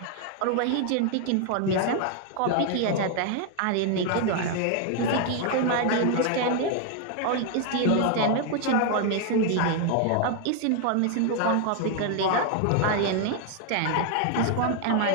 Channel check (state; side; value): different; both; correlation 0.00